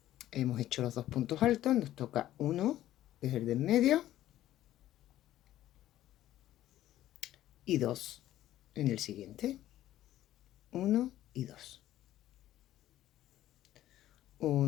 Hemos hecho los 2 puntos altos, nos toca 1, que es el de en medio, y 2 en el siguiente. 1 y 2.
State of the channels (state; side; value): quieter; right; 13.6 dB